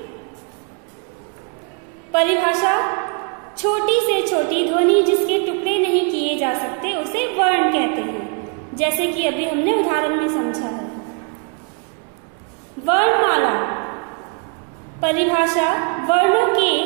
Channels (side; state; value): left; quieter; 38.4 dB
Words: परिभाषा: छोटी से छोटी ध्वनि जिसके टुकड़े नहीं किए जा सकते उसे वर्ण कहते हैं, जैसे कि अभी हमने उदाहरण में समझा है. वर्णमाला. परिभाषा: वर्णों के